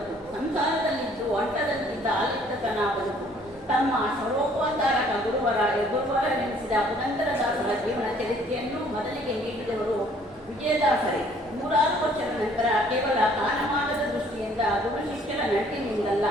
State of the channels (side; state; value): both; normal; correlation 0.59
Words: ಸಂಸಾರದಲ್ಲಿದ್ದು ಒಂಟದಂತೆ ಇದ್ದದ್ದ ಆಲಿಪ್ತತನ ಬದುಕು. ತಮ್ಮ ಸರ್ವೋಪಚಾರಕ ಗುರುವರೆನಿಸಿದ ಪುರಂದರದಾಸರ ಜೀವನ ಚರಿತ್ರೆಯನ್ನು ಮೊದಲಿಗೆ ನೀಡಿದವರು ವಿಜಯದಾಸರೇ. 106 ವರ್ಷದ ನಂತರ ಕೇವಲ ಕಾಲಮಾನದ ದೃಷ್ಟಿಯಿಂದ ಗುರು ಶಿಷ್ಯರ ನಂಟಿನಿಂದಲ್ಲ,